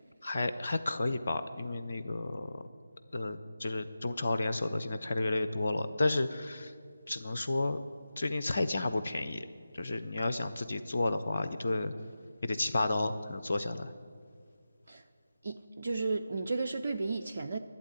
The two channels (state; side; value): inverted; both; correlation -0.92